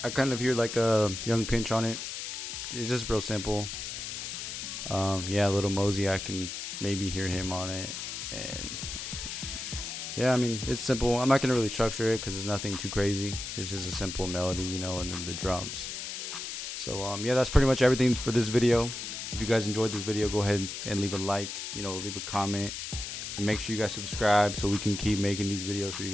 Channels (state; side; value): noise; left; hiss, 6 dB below the sound